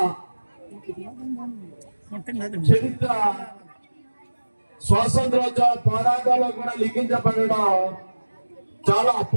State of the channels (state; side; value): inverted; both; correlation -1.00